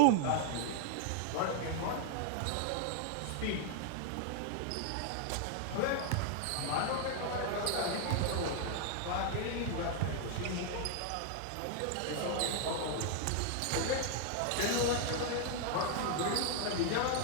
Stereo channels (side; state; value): both; different; correlation 0.00